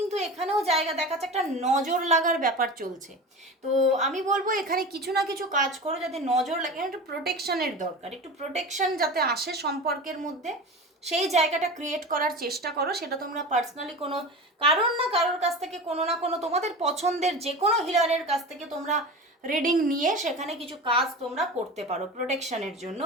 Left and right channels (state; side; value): normal; both; correlation 0.30